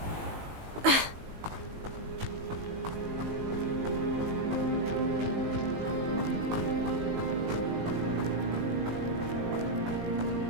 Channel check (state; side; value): late; left; 18 ms